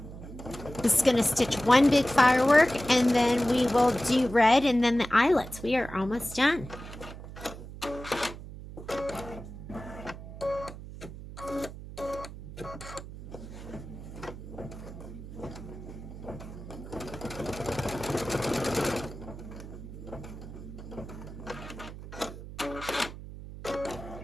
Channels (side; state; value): right; noise; hum, 12 dB below the sound